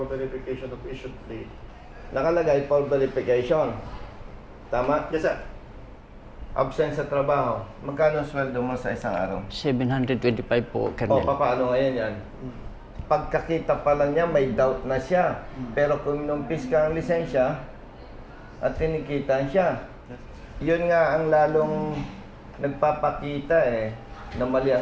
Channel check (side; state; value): both; identical; correlation 1.00